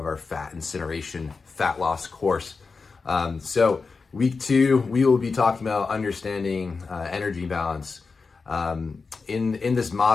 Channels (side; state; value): right; quieter; 4.6 dB